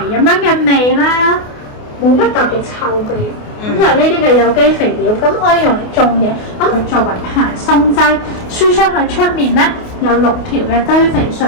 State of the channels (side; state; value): right; late; 28 ms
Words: 咁樣嘅味啦，冇乜特別臭味。咁就係呢啲嘅有機肥料，咁可以用嚟種嘢，咁佢作為排鬆劑，輸出去出面咧有6條嘅堆肥隧